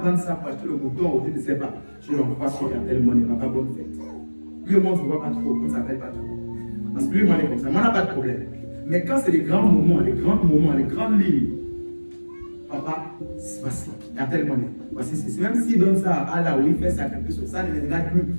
ça pour acheter le mouton, je ne sais pas, je l'envoie sur Airtel Money, papa, bonne fête. Lui, au monde, je ne vois pas trop, on ne s'appelle pas trop. Parce que lui, moi, il est comme ça, moi, on n'a pas de problème. Mais quand c'est les grands moments, les grandes lignes, papa, voici, Airtel Money. Voici, même s'il donne ça à Allah ou il fait sacrifier sur ça, ne me regarde plus.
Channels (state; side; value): inverted; both; correlation -1.00